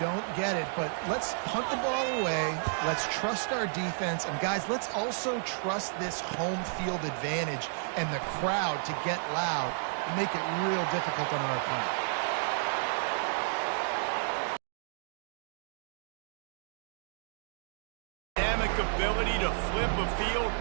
get it, but let's punt the ball away. Let's trust our defense. And, guys, let's also trust this home field advantage and the crowd to get loud and make it real difficult on our opponent. Dynamic ability to flip a field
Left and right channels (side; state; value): left; silent; digital silence